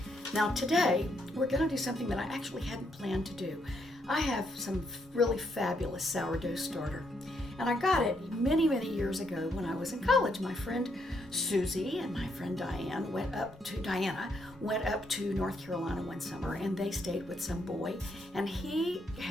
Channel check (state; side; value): normal; both; correlation 0.75